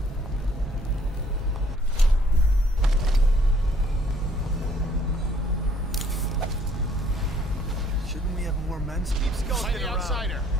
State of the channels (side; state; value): both; normal; correlation 0.62